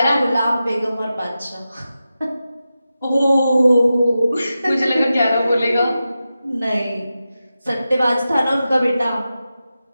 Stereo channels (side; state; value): both; inverted; correlation -0.92